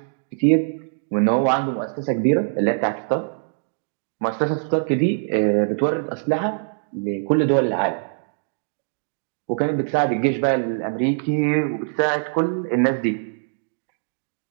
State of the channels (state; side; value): silent; left; digital silence